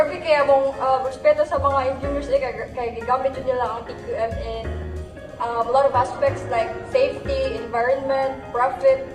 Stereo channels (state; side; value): identical; both; correlation 1.00